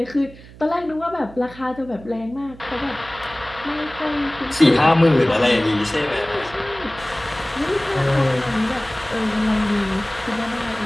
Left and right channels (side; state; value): right; noise; hum, 19 dB below the sound